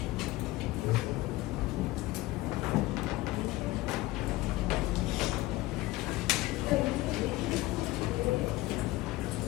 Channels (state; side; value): quieter; right; 18.6 dB